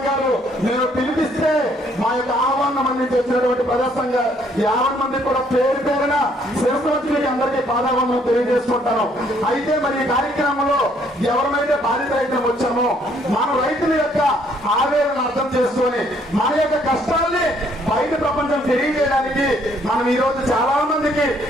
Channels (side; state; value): both; normal; correlation 0.66